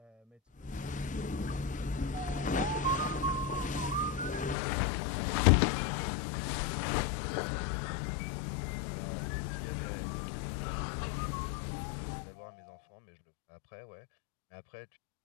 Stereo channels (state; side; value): drops out; right; at 4.5 s